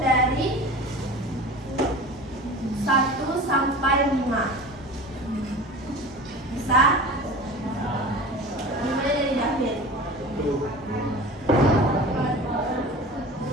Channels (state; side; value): normal; both; correlation 0.37